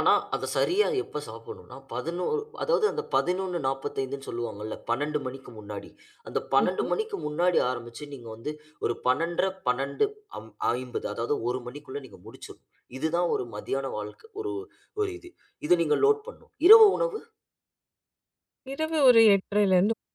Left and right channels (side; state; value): both; identical; correlation 1.00